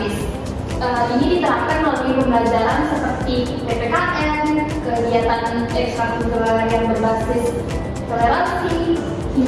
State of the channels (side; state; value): both; identical; correlation 1.00